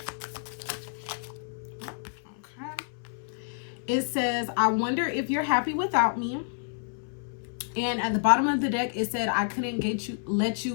It says, I wonder if you're happy without me. And at the bottom of the deck, it said, I couldn't let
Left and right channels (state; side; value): silent; right; 59 dB below the other